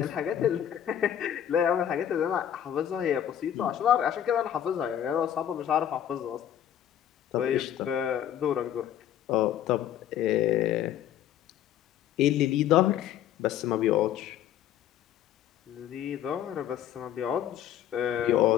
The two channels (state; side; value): quieter; right; 10.6 dB